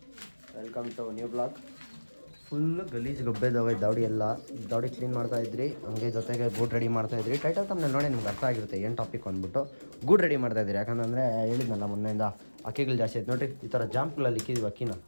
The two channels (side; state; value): both; inverted; correlation -1.00